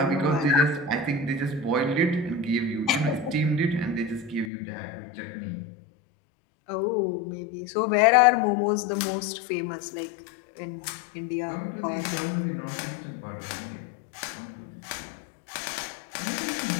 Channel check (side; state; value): right; drops out; at 4.5 s